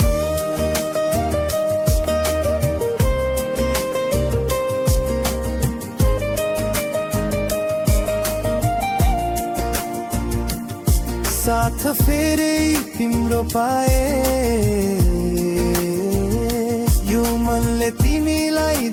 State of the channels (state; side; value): identical; both; correlation 1.00